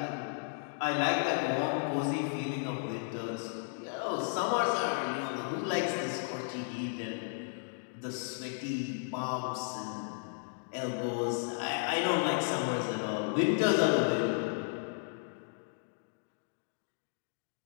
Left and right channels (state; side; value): silent; right; digital silence